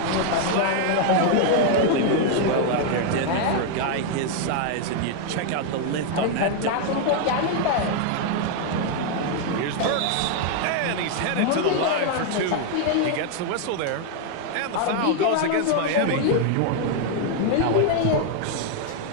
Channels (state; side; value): different; both; correlation 0.00